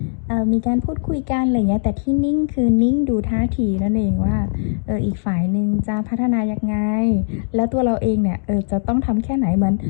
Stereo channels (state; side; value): silent; right; digital silence